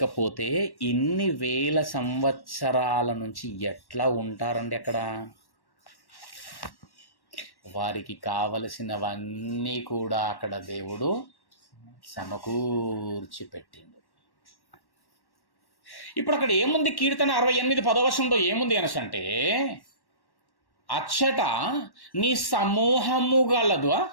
ఇన్ని వేల సంవత్సరాల నుంచి ఎట్లా ఉంటారండి అక్కడ? వారికి కావలసినవన్నీ కూడా అక్కడ దేవుడు సమకూర్చి పెట్టిండు. ఇప్పుడు అక్కడ ఏముంది? కీర్తన 68:10 ఏముంది అనసంటే, అచ్చట నీ సమూహము గలదు.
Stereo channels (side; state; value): right; late; 1.1 ms